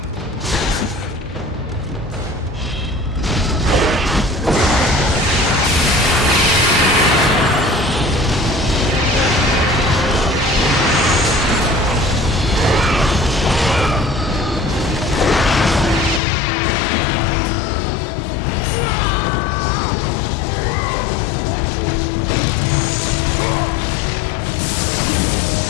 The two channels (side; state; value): right; drops out; at 16.2 s